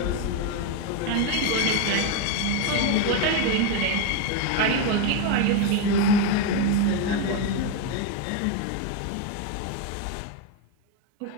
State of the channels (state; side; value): different; both; correlation 0.02